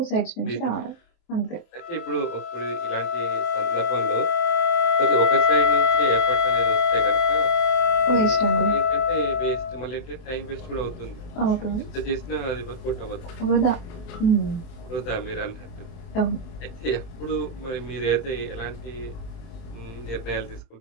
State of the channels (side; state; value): right; late; 23 ms